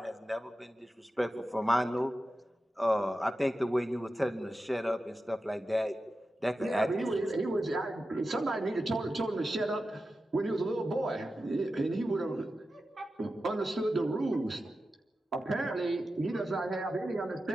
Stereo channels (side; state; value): both; normal; correlation 0.92